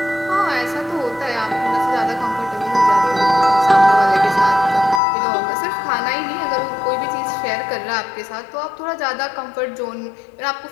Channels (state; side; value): drops out; right; at 5.0 s